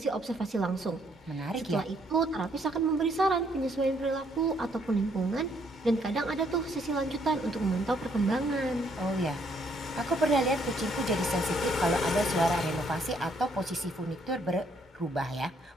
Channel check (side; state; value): both; normal; correlation 0.69